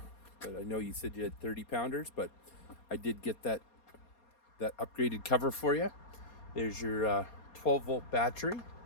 but I know you said you had 30-pounders, but I did get that upgraded cover for you. There's your 12-volt battery.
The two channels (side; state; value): right; late; 4.2 ms